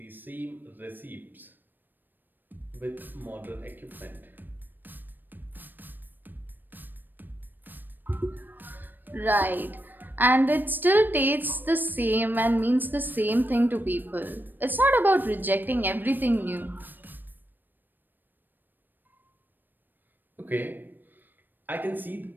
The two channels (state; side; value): late; left; 0.092 ms